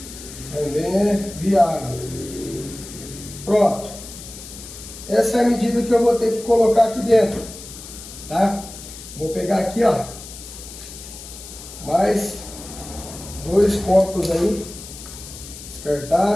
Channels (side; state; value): left; noise; hiss, 14 dB below the sound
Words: Também é viável. Pronto. Essa é a medida que eu vou ter que colocar aqui dentro, tá? Vou pegar aqui, ó, mais 2 copos aí,